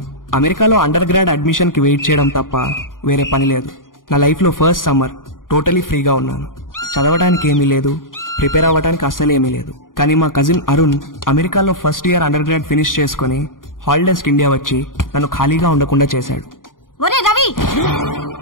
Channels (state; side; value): late; right; 0.90 ms